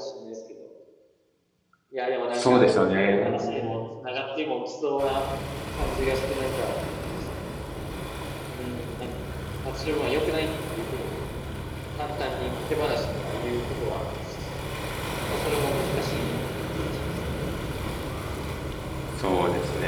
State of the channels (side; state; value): both; identical; correlation 1.00